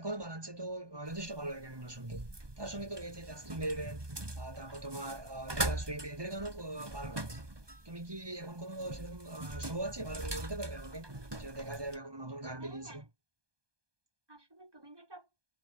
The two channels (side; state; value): left; late; 1.2 ms